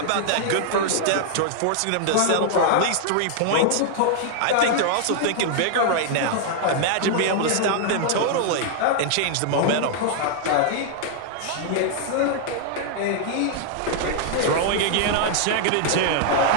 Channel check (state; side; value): different; both; correlation 0.00